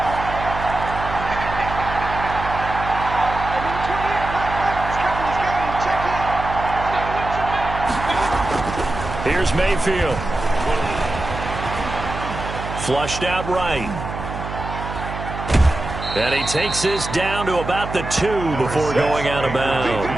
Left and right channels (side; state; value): right; noise; hum, 8 dB below the sound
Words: Here's Mayfield. Flushed out right. And he takes this down to about the 2 before going out of